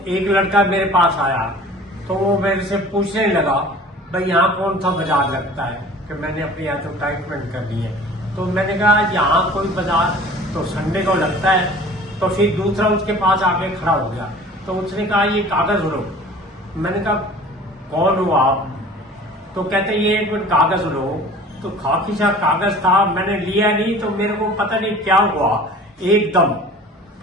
एक लड़का मेरे पास आया तो वो मेरे से पूछने लगा, भाई यहाँ कौन सा बाजार लगता है, कि मैंने अपनी एडवर्टाइजमेंट कर दी है। तो मैंने कहा यहाँ कोई बाजार तो संडे को लगता है। तो फिर दूसरा उसके पास आके खड़ा हो गया तो उसने कहा ये कागज लो। मैंने कहा कौन हो आप? तो कहते ये एक मिनट कागज लो। तो खाकी सा कागज था, मैंने लिया नहीं तो मेरे को पता नहीं क्या हुआ एकदम,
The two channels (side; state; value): both; normal; correlation 0.45